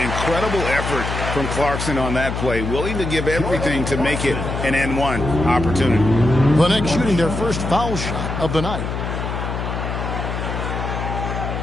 effort from Clarkson on that play. Willing to give everything to make it an N1 opportunity. The Knicks shooting their first foul shot of the night.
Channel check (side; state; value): left; noise; hum, 4 dB below the sound